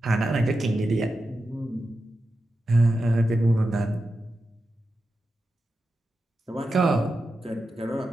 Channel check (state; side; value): normal; both; correlation 0.90